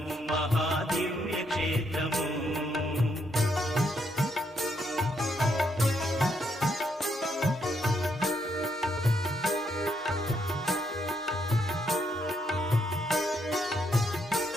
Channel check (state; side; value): normal; both; correlation 0.76